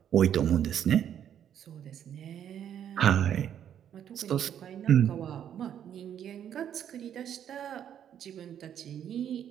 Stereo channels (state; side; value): quieter; left; 9.6 dB